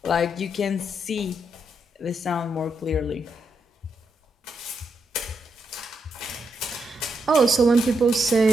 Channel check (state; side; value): normal; both; correlation 0.81